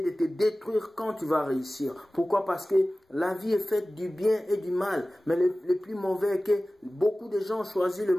de te détruire quand tu vas réussir. Pourquoi? Parce que la vie est faite du bien et du mal. Mais le plus mauvais est que beaucoup de gens ont choisi le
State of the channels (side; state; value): both; normal; correlation 0.97